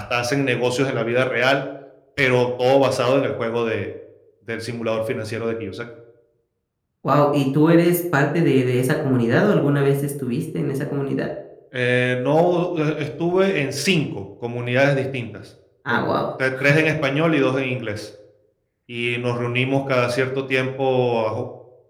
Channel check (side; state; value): both; identical; correlation 1.00